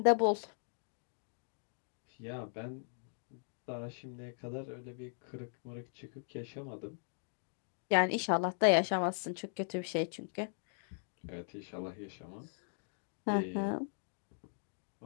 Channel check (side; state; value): right; silent; digital silence